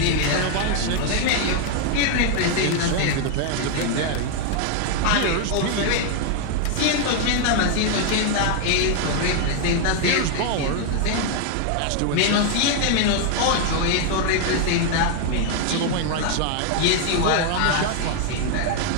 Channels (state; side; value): different; both; correlation 0.00